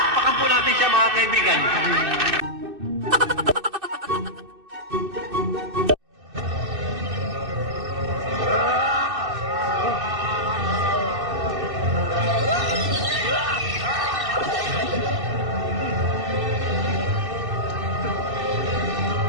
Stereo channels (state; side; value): late; left; 2.6 ms